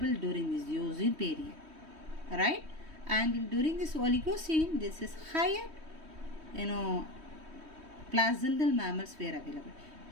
during this Eocene period, right? And during this Oligocene, this is higher, placental mammals were available.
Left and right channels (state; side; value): late; left; 3.2 ms